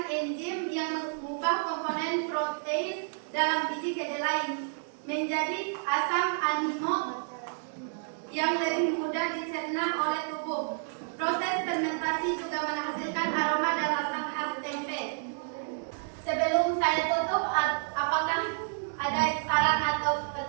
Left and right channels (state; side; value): silent; left; digital silence